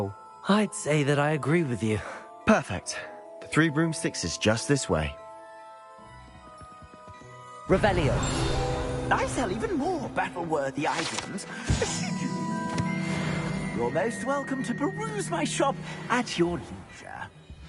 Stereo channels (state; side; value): identical; both; correlation 1.00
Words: I'd say that I agree with you. Perfect. The 3 broomsticks is just this way. Revelio. I sell even more battle-worthy items. You're most welcome to peruse my shop at your leisure.